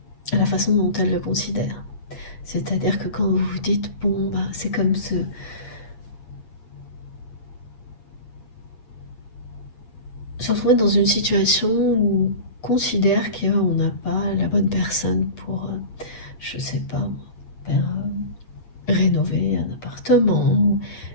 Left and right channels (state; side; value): late; right; 8.3 ms